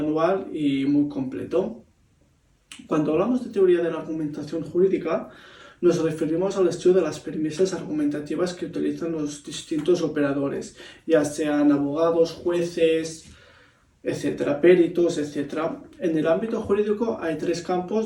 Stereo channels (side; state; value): both; identical; correlation 1.00